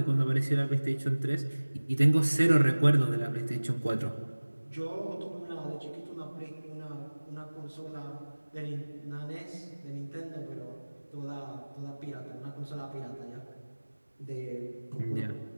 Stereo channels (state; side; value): inverted; both; correlation -1.00